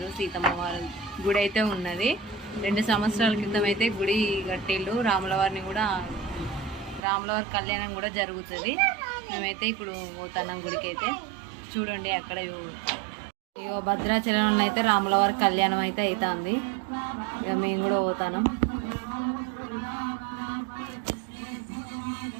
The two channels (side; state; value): left; drops out; at 7.0 s